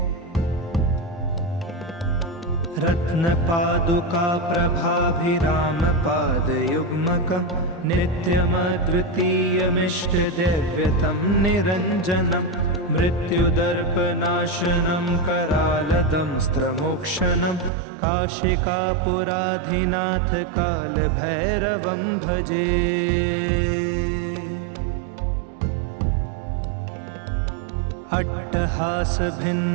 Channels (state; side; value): drops out; left; at 17.7 s